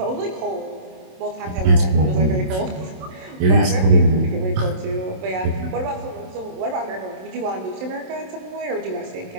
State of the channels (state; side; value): late; left; 27 ms